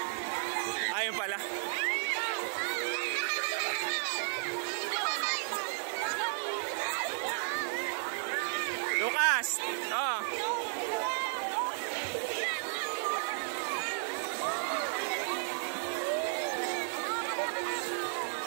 Ayun pala. Lucas! Oh.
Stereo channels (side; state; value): left; silent; 55 dB below the other